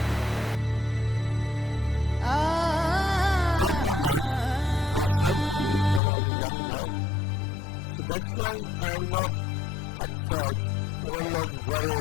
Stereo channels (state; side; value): drops out; right; at 6.0 s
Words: All my life was shown to me when I was a young boy. So that's why I am not upset or I am not